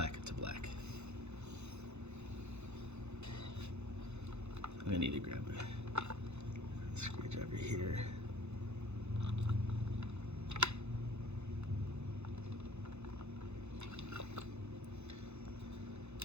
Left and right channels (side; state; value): left; late; 0.81 ms